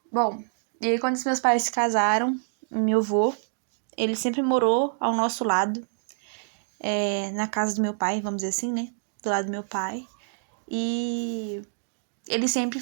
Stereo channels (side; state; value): left; silent; digital silence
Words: Bom, e aí quando os meus pais se casaram, meu avô, ele sempre morou ao nosso lado, na casa do meu pai, vamos dizer assim, né? Do lado do meu pai. E ele sempre